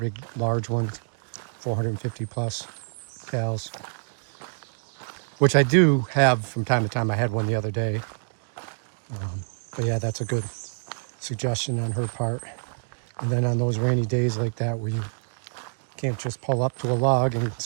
large ones, 450 plus calories, which I do have from time to time. I had one the other day. But yeah, that's a good suggestion on her part. And then on those rainy days like that where you can't just pull up to a log and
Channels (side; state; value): left; silent; digital silence